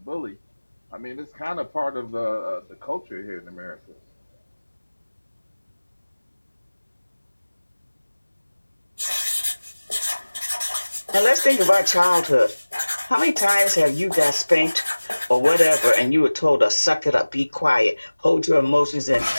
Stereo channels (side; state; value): both; inverted; correlation -1.00